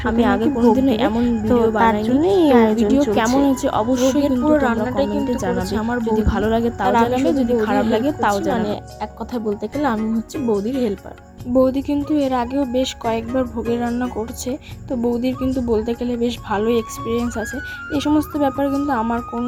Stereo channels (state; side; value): identical; both; correlation 1.00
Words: আমি আগে নাকি ভোগ কোনোদিনও দেবে, এমন তো ভিডিও তার বানাইনি। জন্যই এই তো আয়োজন ভিডিও চলছে। কেমন হয়েছে অবশ্যই ভোগের কিন্তু পুরো তোমরা রান্নাটাই কমেন্টে কিন্তু জানাবে। করেছে আমার যদি বৌদি। ভালো লাগে তাও আর আমি জানাবে, শুধু যদি বৌদির খারাপ হেল্প লাগে তাও করছি, মানে জানাবে। এক কথায় বলতে গেলে আমি হচ্ছে বৌদির হেল্পার। বৌদি কিন্তু এর আগেও বেশ কয়েকবার ভোগের রান্না করছে। তো বৌদির কিন্তু বলতে গেলে বেশ ভালোই এক্সপিরিয়েন্স আছে। এই সমস্ত ব্যাপারে কিন্তু আমার